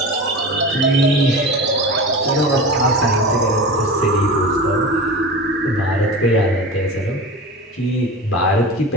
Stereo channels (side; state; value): both; normal; correlation 0.31